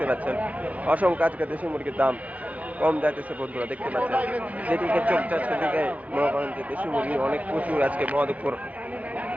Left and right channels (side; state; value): left; late; 0.070 ms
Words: পাচ্ছেন। অসংখ্য আজকে দেশি মুরগির দাম কম যাইতেছে বন্ধুরা দেখতে পাচ্ছেন। যেদিকে চোখ যাচ্ছে সেদিকে মনে করেন যে দেশি মুরগি অনেক প্রচুর আজকে মহাদেবপুর